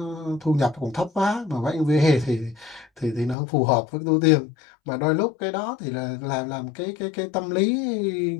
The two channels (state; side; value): drops out; right; at 3.4 s